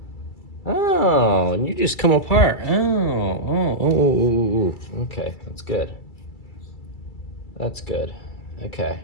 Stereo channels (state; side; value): late; right; 2.3 ms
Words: Oh, and you just come apart. Oh. Okay, that's good. That's good. Okay,